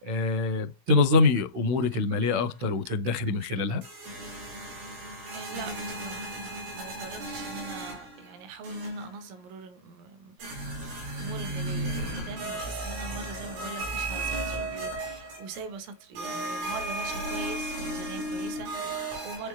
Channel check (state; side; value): late; left; 16 ms